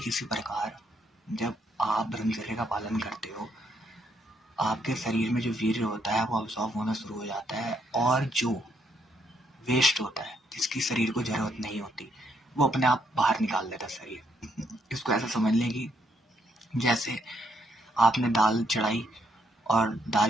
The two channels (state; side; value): normal; both; correlation 0.73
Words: इसी प्रकार जब आप ब्रह्मचर्य का पालन करते हो, आपके शरीर में जो वीर्य होता है वो अब्सॉर्ब होना शुरू हो जाता है, और जो वेस्ट होता है जिसकी शरीर को जरूरत नहीं होती वो अपने आप बाहर निकाल देता है शरीर। इसको ऐसा समझ लें कि जैसे आपने दाल चढ़ाई और